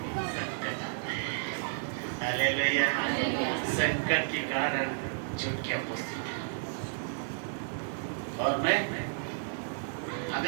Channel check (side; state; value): left; silent; digital silence